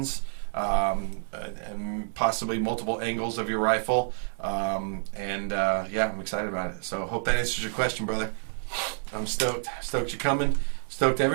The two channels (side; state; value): left; silent; digital silence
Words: and possibly multiple angles of your rifle. Yeah, I'm excited about it. So hope that answers your question, brother. I'm stoked. Stoked you're coming. Stoked